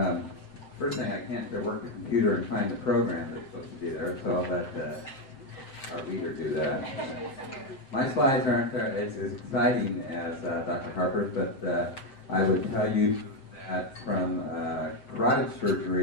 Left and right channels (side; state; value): right; late; 7.7 ms